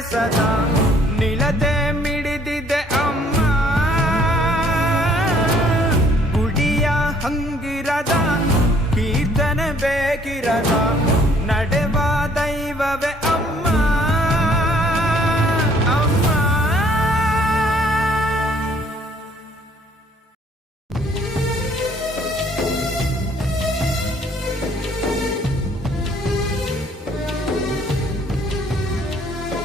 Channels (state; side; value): normal; both; correlation 0.61